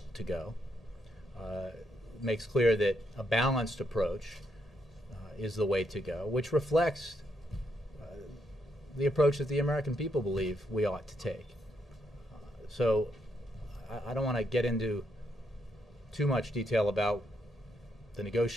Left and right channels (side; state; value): both; normal; correlation 0.78